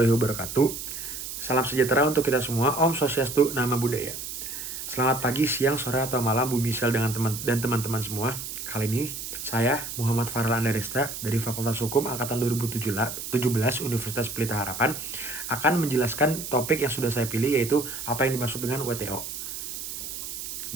wabarakatuh. Salam sejahtera untuk kita semua. Om Swastiastu, Nama Budaya. Selamat pagi, siang, sore, atau malam Bu Misal dengan teman-teman semua. Kali ini saya Muhammad Farel Andaresta dari Fakultas Hukum Angkatan 2017 Universitas Pelita Harapan akan menjelaskan topik yang sudah saya pilih, yaitu apa yang dimaksud dengan WTO.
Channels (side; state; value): right; noise; hiss, 7 dB below the sound